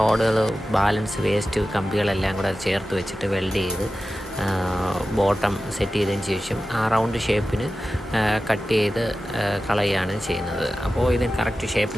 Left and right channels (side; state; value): both; normal; correlation 0.94